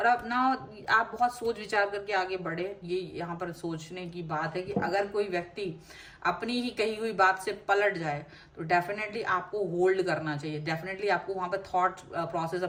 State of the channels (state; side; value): identical; both; correlation 1.00